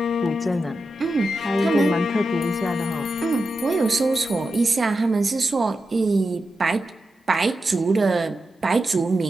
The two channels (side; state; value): both; normal; correlation 0.90